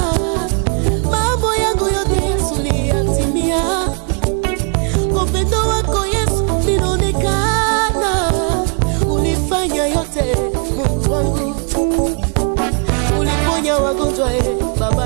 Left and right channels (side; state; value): left; quieter; 39.1 dB